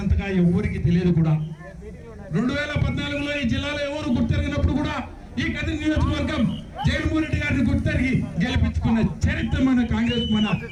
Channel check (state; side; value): identical; both; correlation 1.00